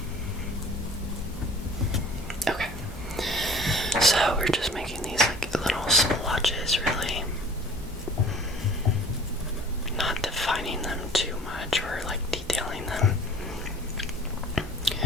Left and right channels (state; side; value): normal; both; correlation 0.48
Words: Okay, so we're just making these like little splotches, really. Not defining them too much or like detailing them.